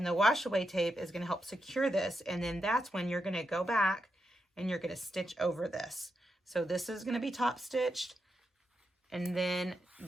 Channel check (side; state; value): both; normal; correlation 0.85